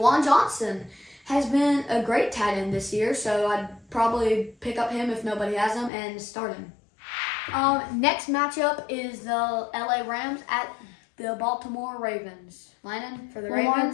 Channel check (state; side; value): drops out; right; at 5.9 s